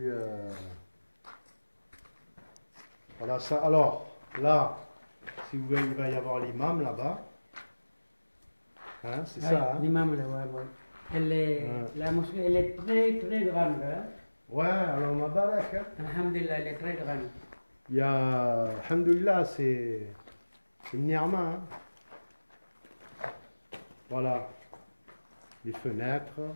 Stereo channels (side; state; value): both; inverted; correlation -1.00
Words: Voilà ça. Alors, là, si vous voyez, il va y avoir l'imam là-bas. Hein, c'est ça. Hein? L'imam là-bas, ouais. La mosquée, elle est très grande. Hein? Ouais, alors ma barak. Hein? Alhamdulillah, elle est très grande. Il y a, alhamdulillah, c'est une ni'ma. Hein? Voilà. Les fenêtres.